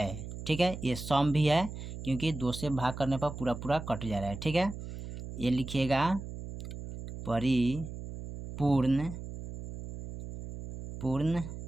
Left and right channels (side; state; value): right; noise; hum, 9 dB below the sound